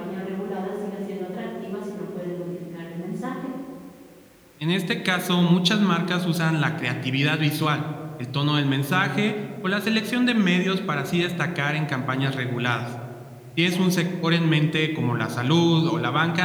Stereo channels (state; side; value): identical; both; correlation 1.00